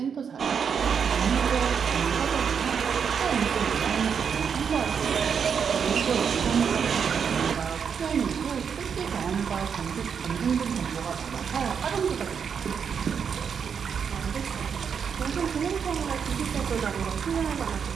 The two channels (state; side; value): quieter; left; 6.9 dB